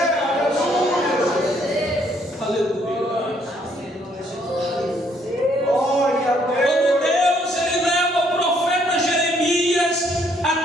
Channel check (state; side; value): normal; both; correlation 0.68